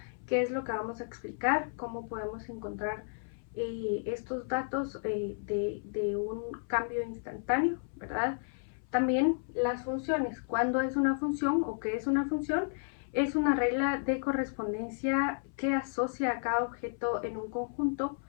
que es lo que vamos a explicar, cómo podemos encontrar estos datos de un cambio instantáneo, ¿verdad? También las funciones, cuándo es una función o qué es una función. Es una regla de correspondencia que asocia a cada objeto en un conjunto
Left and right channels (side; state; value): right; silent; 56 dB below the other